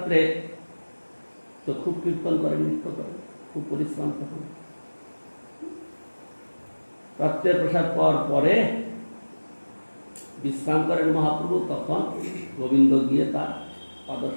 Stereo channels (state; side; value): inverted; both; correlation -1.00